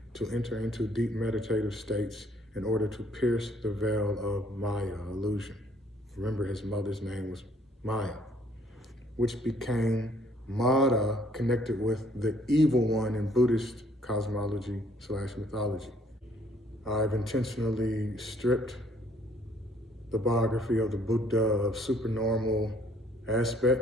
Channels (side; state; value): both; normal; correlation 0.63